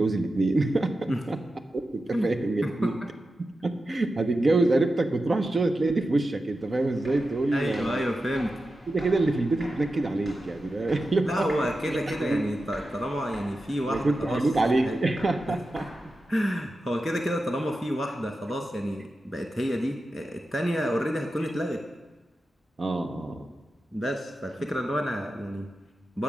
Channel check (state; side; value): normal; both; correlation 0.91